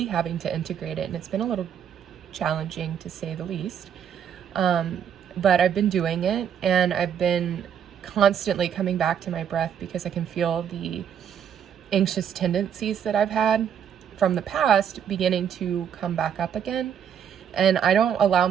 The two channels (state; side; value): quieter; left; 8.5 dB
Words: having to integrate it, and it's been a little challenging to say the least. But I've been doing it, and I've been constantly coming back to my breath because I can feel the anxious tendencies that I've had from the past beginning to come back up again. And I don't allow